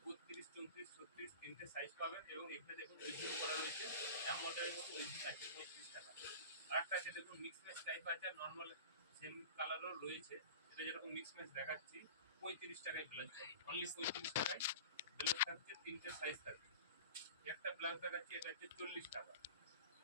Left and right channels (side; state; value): both; inverted; correlation -0.36